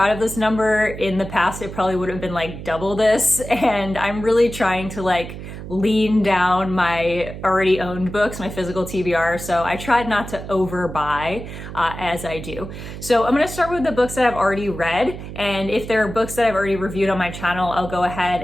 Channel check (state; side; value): noise; right; hum, 10 dB below the sound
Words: of this number. In the past, it probably would have been like double this, and I'm really trying to lean down my already owned books, my physical TBR, so I tried not to overbuy as I do. So I'm gonna start with the books that I've already read, and if there are books that I've already reviewed on my channel, I'll go ahead